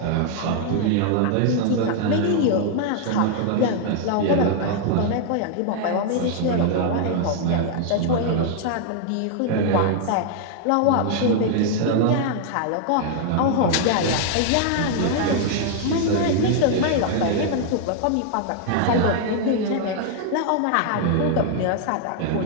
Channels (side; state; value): both; different; correlation 0.00